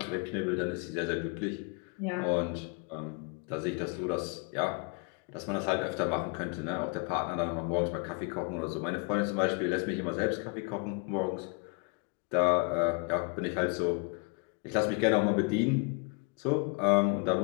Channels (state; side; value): quieter; right; 32.5 dB